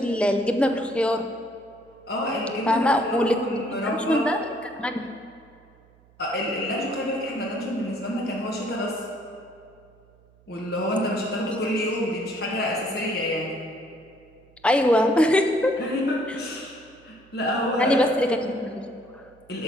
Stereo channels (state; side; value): noise; right; hum, 29 dB below the sound